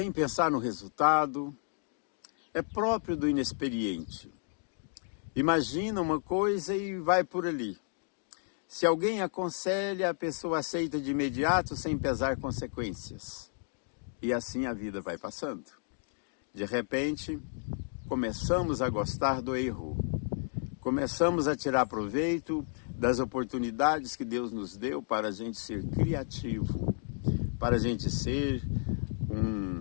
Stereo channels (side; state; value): right; silent; 56 dB below the other